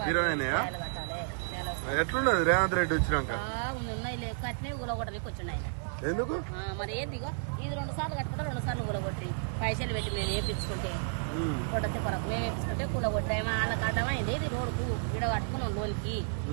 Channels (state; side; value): silent; left; digital silence